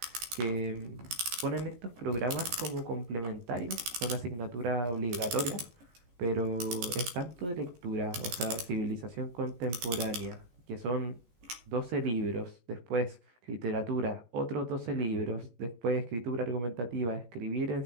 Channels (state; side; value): late; left; 16 ms